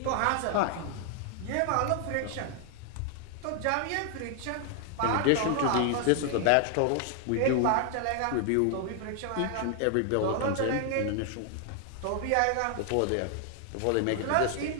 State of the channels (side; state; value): both; different; correlation 0.00